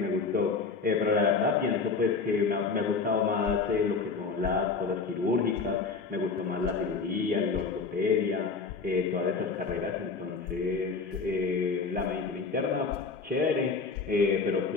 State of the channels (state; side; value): quieter; right; 4.6 dB